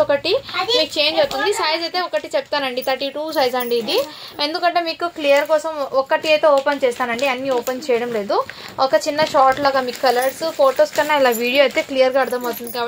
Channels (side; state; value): both; identical; correlation 1.00